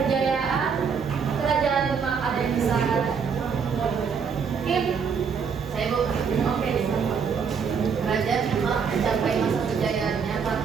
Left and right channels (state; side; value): quieter; left; 6.2 dB